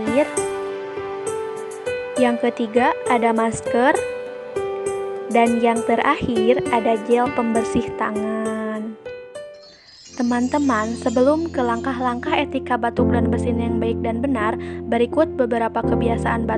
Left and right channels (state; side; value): identical; both; correlation 1.00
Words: Yang ketiga, ada masker. Dan yang terakhir, ada gel pembersih tangan. Teman-teman, sebelum ke langkah-langkah etika batuk dan bersin yang baik dan benar, berikut beberapa kebiasaan